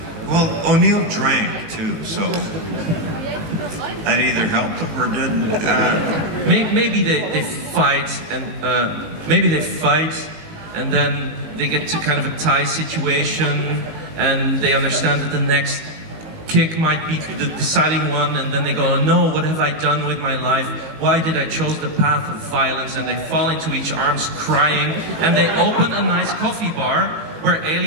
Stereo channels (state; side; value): late; left; 19 ms